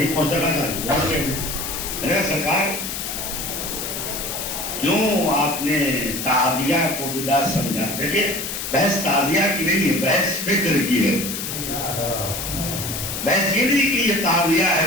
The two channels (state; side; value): noise; left; hiss, 5 dB below the sound